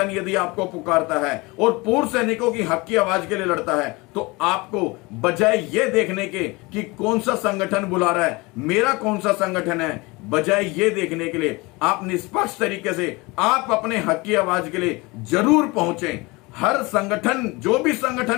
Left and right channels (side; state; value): right; quieter; 24.6 dB